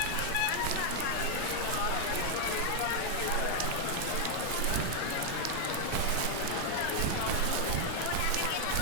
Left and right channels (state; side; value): different; both; correlation 0.00